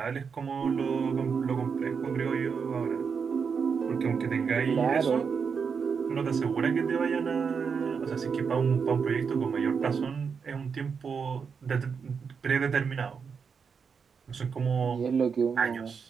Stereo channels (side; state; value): left; quieter; 6.0 dB